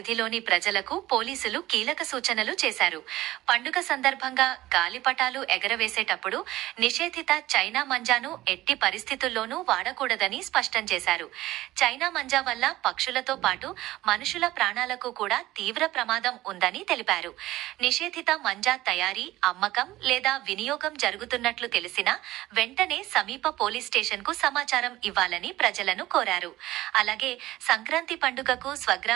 ప్రజలకు పోలీసులు కీలక సూచనలు చేశారు. పండుగ సందర్భంగా గాలిపటాలు ఎగరవేసేటప్పుడు నిషేధిత చైనా మంజాను ఎట్టి పరిస్థితుల్లోనూ వాడకూడదని స్పష్టం చేశారు. చైనా మంజా వల్ల పక్షులతో పాటు మనుషుల ప్రాణాలకు కూడా తీవ్ర ప్రమాదం ఉందని తెలిపారు. నిషేధిత మంజా తయారీ, అమ్మకం లేదా వినియోగం జరుగుతున్నట్లు తెలిసినా వెంటనే సమీప పోలీస్ స్టేషన్కు సమాచారం ఇవ్వాలని ప్రజలను కోరారు. అలాగే సంక్రాంతి పండుగకు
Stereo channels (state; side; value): quieter; left; 16.5 dB